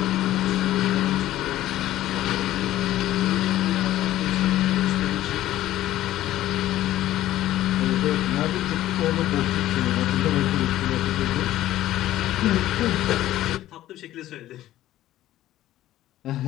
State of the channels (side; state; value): right; quieter; 14.0 dB